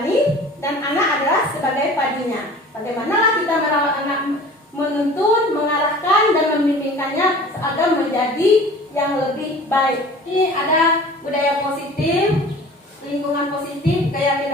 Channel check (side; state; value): both; normal; correlation 0.44